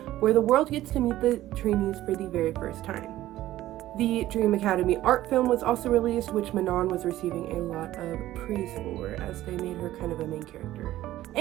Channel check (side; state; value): left; quieter; 14.7 dB